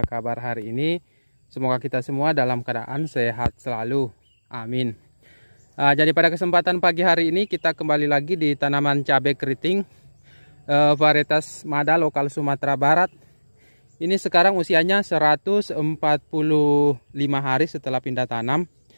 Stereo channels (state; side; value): inverted; both; correlation -1.00